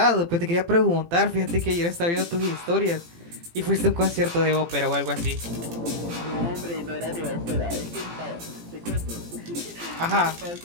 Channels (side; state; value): left; late; 18 ms